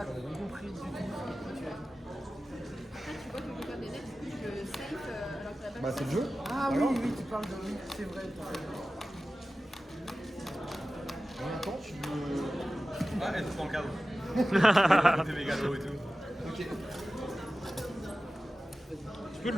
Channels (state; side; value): normal; both; correlation 0.95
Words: compris du tout. Après, tu vois que je peux faire des nets, du coup, je save alors que la balle. Bah c'est le jeu. Ah oui, oui, tu parles de oui, c'est vrai. En même temps, tu veux... Ah, elle est dans le cadre. Des mégalos et tout. Ok. Tu peux